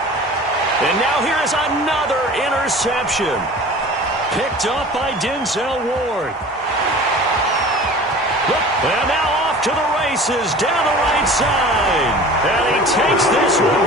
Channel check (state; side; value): normal; both; correlation 0.41